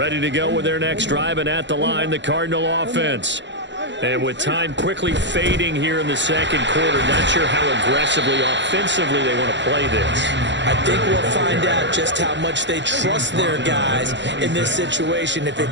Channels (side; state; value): left; late; 0.52 ms